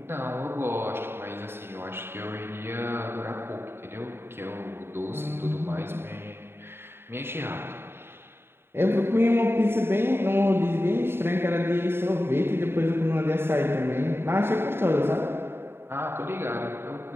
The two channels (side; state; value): left; late; 0.11 ms